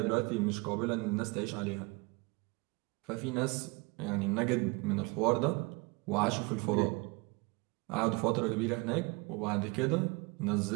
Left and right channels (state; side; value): quieter; left; 26.9 dB